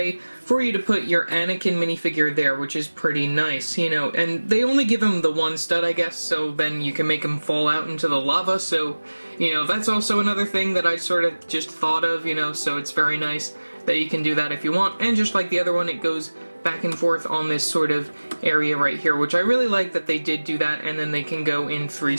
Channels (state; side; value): inverted; both; correlation -1.00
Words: for you to put your Anakin minifigure there, which is pretty nice, you know. And they only give him the one stud, I guess, so then you can make him fall out into the lava, so, you know, that's also another thing that I sort of just thought of, you know, so it's very nice that you can do that if you want. And just like the other one, it goes back and forth on this sort of area right here, which I really like that they did do that, and then they can go in